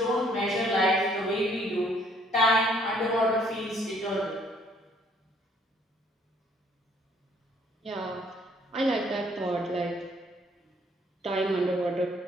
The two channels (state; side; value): normal; both; correlation 0.63